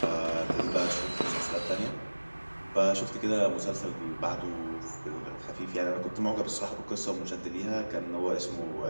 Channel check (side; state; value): both; inverted; correlation -1.00